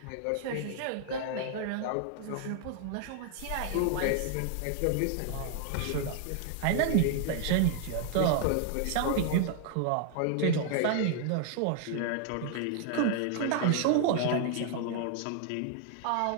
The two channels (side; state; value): both; different; correlation 0.00